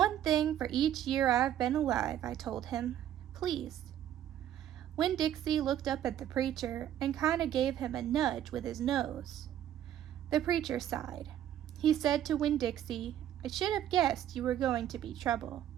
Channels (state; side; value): quieter; left; 11.1 dB